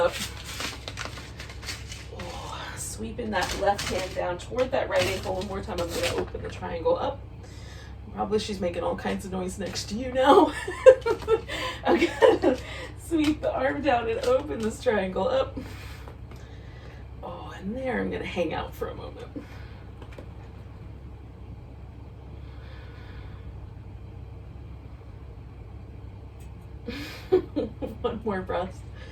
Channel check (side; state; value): both; identical; correlation 1.00